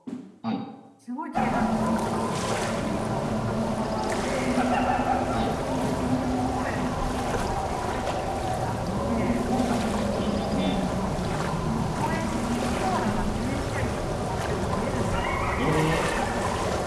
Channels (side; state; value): both; identical; correlation 1.00